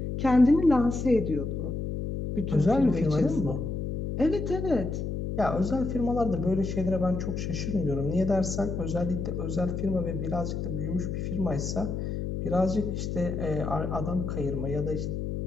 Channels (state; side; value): noise; left; hum, 3 dB below the sound